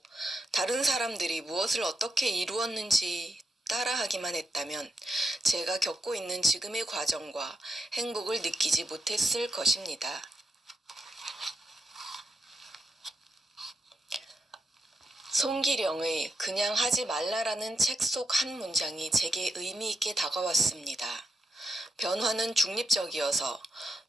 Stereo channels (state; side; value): normal; both; correlation 0.84